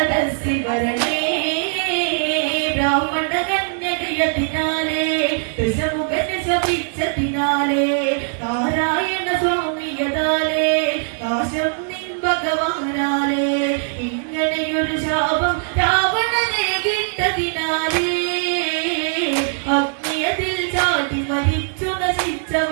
വരണേ ബ്രാഹ്മണകന്യകയതിനാലേ ദശമുഖനെ ശപിച്ചതിനാലേ നാരായണ സ്വാമിയതാലേ നാശം നിൻ ഭഗവാനാലേ ഇങ്ങനെയൊരു ശാപം രാവണനെ കിട്ടതിനാലേ അഗ്നിയതിൽ ചാടി മരിച്ചു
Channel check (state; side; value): silent; left; 65 dB below the other